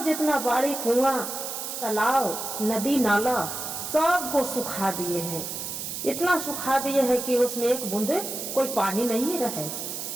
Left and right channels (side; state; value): right; noise; hiss, 6 dB below the sound